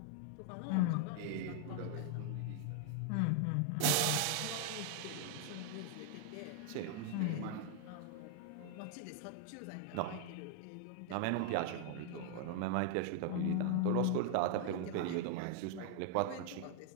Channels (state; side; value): different; both; correlation 0.00